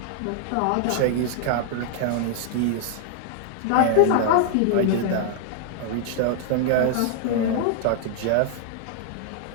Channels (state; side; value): different; both; correlation -0.01